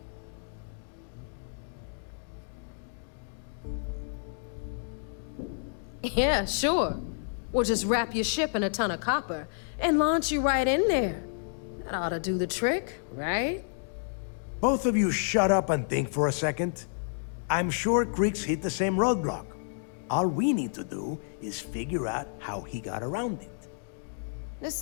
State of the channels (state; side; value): silent; right; digital silence